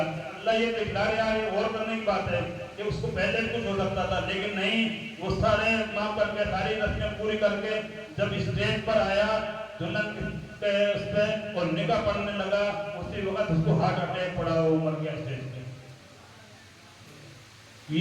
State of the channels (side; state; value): both; identical; correlation 1.00